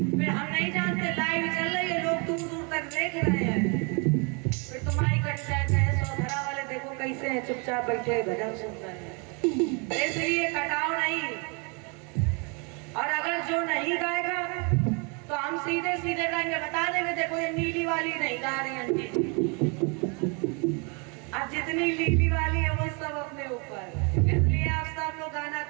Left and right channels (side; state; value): left; quieter; 33.3 dB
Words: फिर हम नहीं जानते लाइव चल रही है, लोग दूर दूर तक देख रहे हैं, फिर तुम्हारी कट जाए। चाहे सौधरा वाले देखो कैसे हैं, चुपचाप बैठे भजन सुन रहे हैं। इसलिए कटाओ नहीं। और अगर जो नहीं गाएगा तो हम सीधे सीधे रंग बता देंगे, देखो ये नीली वाली नहीं गा रही आंटी। अब जितनी नीली वाली है वो सब अपने ऊपर। इसलिए आप सब लोग गाना